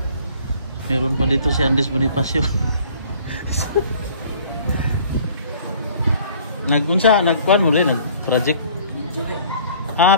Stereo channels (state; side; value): inverted; both; correlation -0.54